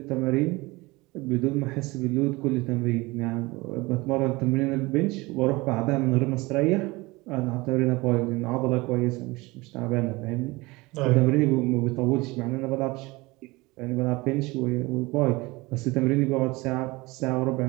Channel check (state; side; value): quieter; left; 22.7 dB